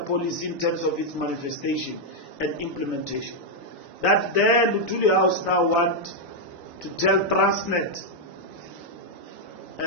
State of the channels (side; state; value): both; normal; correlation -0.02